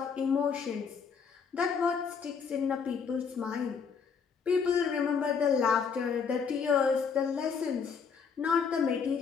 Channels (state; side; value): quieter; right; 6.1 dB